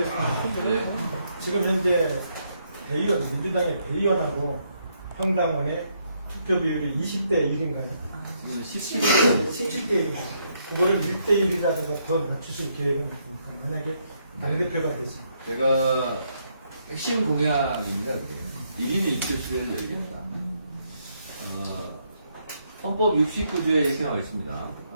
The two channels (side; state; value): both; inverted; correlation -0.75